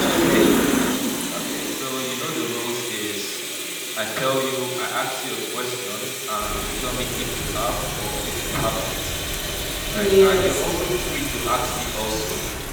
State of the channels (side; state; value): both; identical; correlation 1.00